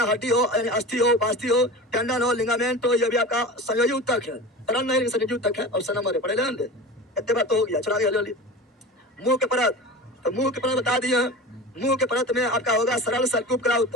हड्डी हो यानी अस्थि हो, बास्थि हो, टेंडन हो, लिगामेंट हो, ये भी आपका संयोजी उत्तक है, तरल नहीं संयोजी उत्तक है। ऑप्शन नंबर पढ़े लेंगे, इतने बात तो हो गया। चलो आगे जल्दी। मुंह के परत, तो मुंह के परत बता दिए हैं। मुंह के परत में आपका होगा सरल सल्की उपकला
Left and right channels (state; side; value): normal; both; correlation 0.32